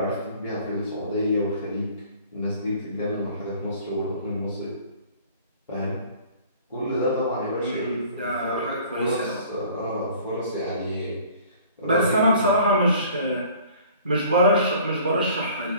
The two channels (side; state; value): both; inverted; correlation -0.51